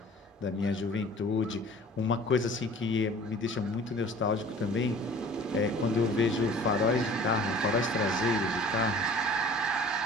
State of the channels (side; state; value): both; normal; correlation 0.47